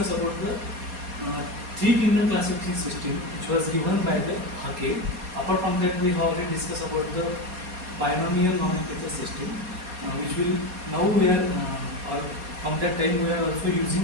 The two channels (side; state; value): left; late; 4.2 ms